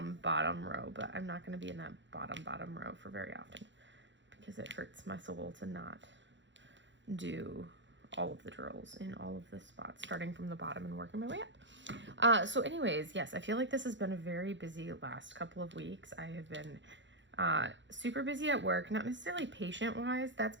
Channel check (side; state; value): left; late; 0.54 ms